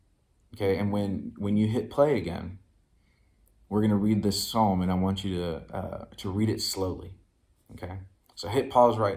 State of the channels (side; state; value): both; identical; correlation 1.00